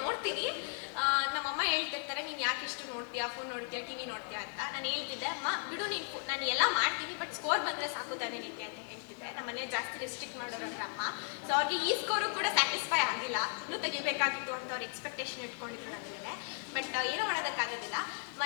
ನೋಡ್ತೀನಿ. ನಮ್ಮಮ್ಮ ಹೇಳ್ತಿರ್ತಾರೆ, ನೀನು ಯಾಕೆ ಇಷ್ಟು ನೋಡ್ತೀಯಾ, ಫೋನ್ ನೋಡ್ತೀಯಾ, ಟಿ ವಿ ನೋಡ್ತೀಯಾ ಅಂತ. ನಾನು ಹೇಳ್ತಿದ್ದೆ, ಅಮ್ಮ ಬಿಡು ನೀನು, ನಾನು ಎಲ್ಲ ಮಾಡ್ತೀನಿ, ಬಟ್ ಸ್ಕೋರ್ ಬಂದರೆ ಸಾಕು ತಾನೇ ನಿಂತೆ ಅಂತ ಹೇಳ್ತಿದ್ದೆ. ನಮ್ಮ ಮನೆ ಜಾಸ್ತಿ ರೆಸ್ಟ್ರಿಕ್ಟ್ ಮಾಡೋರಂದ್ರೆ ಅಮ್ಮ. ಸೊ ಅವ್ರಿಗೆ ಈ ಸ್ಕೋರು ಕೂಡ ಸ್ಯಾಟಿಸ್ಫೈ ಆಗಿಲ್ಲ, ಇನ್ನೂ ತೆಗಿಬೇಕಾಗಿತ್ತು ಅಂತ ಅವ್ರು ಎಕ್ಸ್ಪೆಕ್ಟೇಷನ್ ಇಟ್ಕೊಂಡಿದ್ರು ನನ್ನ ಮೇಲೆ. ಬಟ್ ಏನೂ ಮಾಡೋದಕ್ಕಾಗೋದಿಲ್ಲ.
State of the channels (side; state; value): right; silent; 54 dB below the other